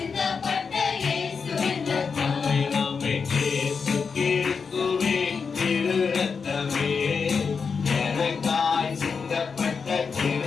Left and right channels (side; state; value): right; quieter; 5.5 dB